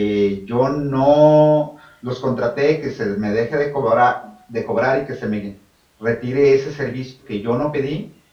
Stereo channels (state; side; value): identical; both; correlation 1.00